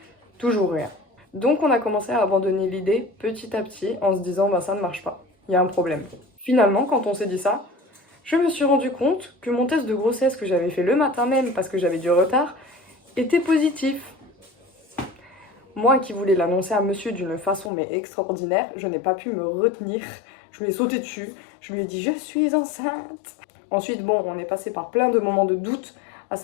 toujours rien. Donc on a commencé à abandonner l'idée petit à petit en se disant bah ça ne marche pas, il y a un problème. Finalement, quand on s'est dit ça, je me suis rendu compte que mon test de grossesse que j'avais fait le matin même parce que j'avais du retard était positif. Moi qui voulais l'annoncer à monsieur d'une façon mais extraordinaire, je n'ai pas pu me retenir. Je lui ai sauté dessus, je lui ai dit je suis enceinte. Ensuite bon, on est passé par plein de moments de doute, à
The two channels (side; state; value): right; drops out; at 17.7 s